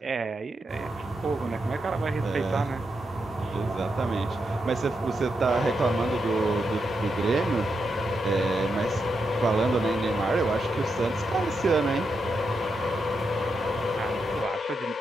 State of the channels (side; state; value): both; normal; correlation 0.84